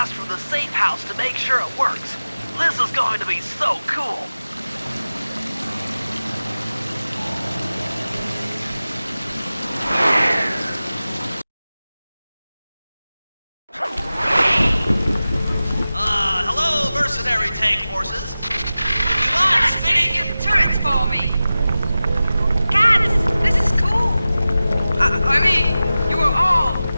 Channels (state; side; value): inverted; both; correlation -0.95